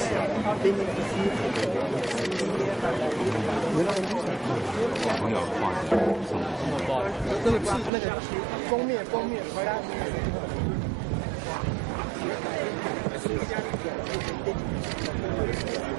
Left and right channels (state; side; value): drops out; left; at 7.9 s